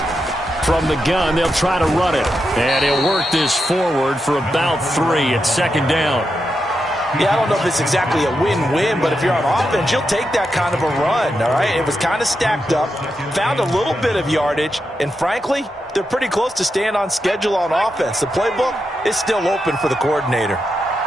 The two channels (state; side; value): normal; both; correlation 0.86